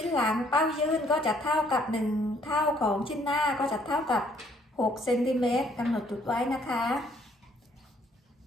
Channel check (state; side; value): normal; both; correlation 0.65